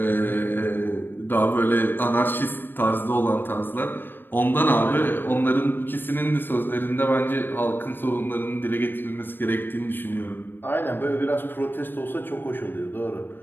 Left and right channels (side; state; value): right; late; 0.096 ms